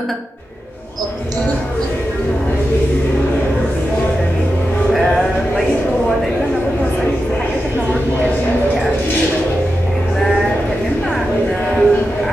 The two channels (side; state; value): both; normal; correlation 0.90